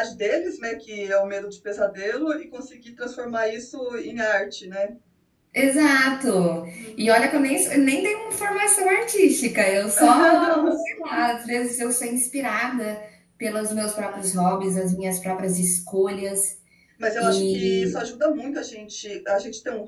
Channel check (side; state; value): both; identical; correlation 1.00